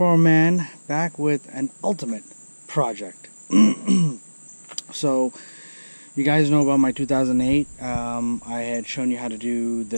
Man back with an ultimate project. So, you guys know about my 2008. I had shown you how to do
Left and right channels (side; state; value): both; inverted; correlation -1.00